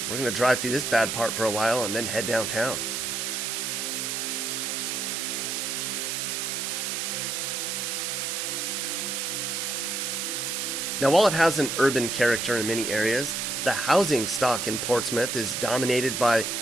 We're going to drive through this bad part for a while and then head downtown. Now, while it has an urban character in many areas, the housing stock in Portsmouth is dominated by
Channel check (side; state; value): right; noise; hiss, 2 dB below the sound